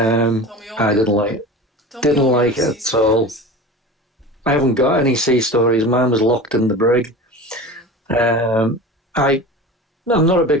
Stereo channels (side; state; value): both; normal; correlation 0.33